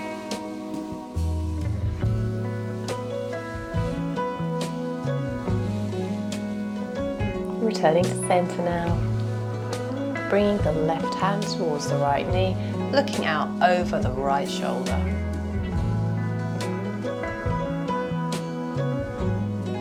Returning to center now, bringing the left hand towards the right knee, looking out over the right shoulder.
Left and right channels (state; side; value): identical; both; correlation 1.00